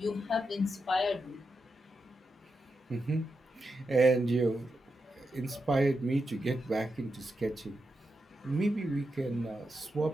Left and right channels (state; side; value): normal; both; correlation 0.87